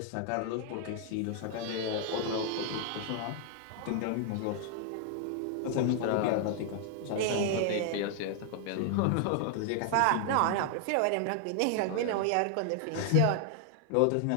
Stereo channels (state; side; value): different; both; correlation 0.00